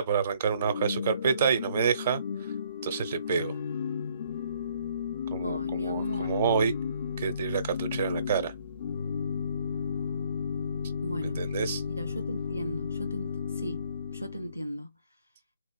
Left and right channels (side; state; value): both; inverted; correlation -0.65